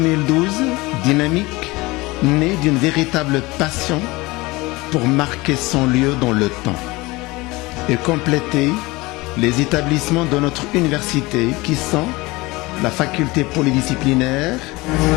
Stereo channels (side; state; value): right; quieter; 22.2 dB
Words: dynamique, né d'une véritable passion pour marquer son lieu dans le temps et compléter les établissements de notre université qui sont la faculté polydisciplinaire,